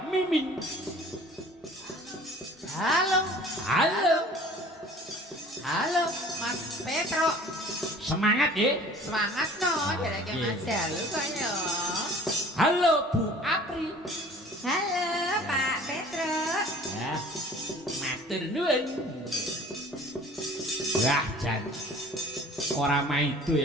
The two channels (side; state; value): both; normal; correlation 0.48